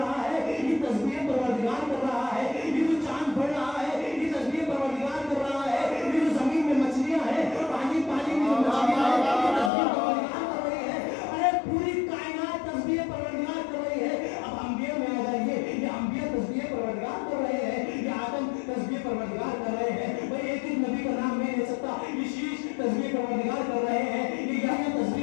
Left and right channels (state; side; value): drops out; right; at 9.7 s